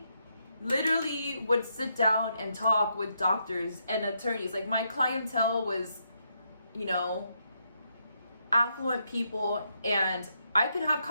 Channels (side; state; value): both; inverted; correlation -0.79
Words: literally would sit down and talk with doctors and attorneys. Like, my clientele was, you know, affluent people, and I could have